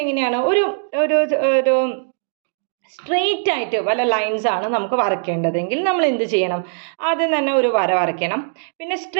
എങ്ങനെയാണ് ഒരു സ്ട്രെയിറ്റ് ആയിട്ട് വല്ല ലൈൻസ് ആണ് നമുക്ക് വരയ്ക്കേണ്ടതെങ്കിൽ നമ്മൾ എന്ത് ചെയ്യണം? ആദ്യം തന്നെ ഒരു വര വരയ്ക്കണം. പിന്നെ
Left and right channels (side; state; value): left; silent; digital silence